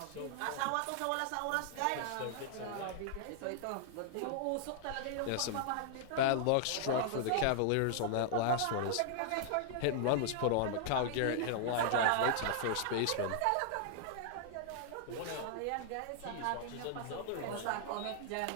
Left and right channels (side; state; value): both; different; correlation -0.01